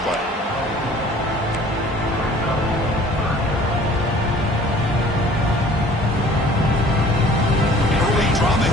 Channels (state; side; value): normal; both; correlation 0.51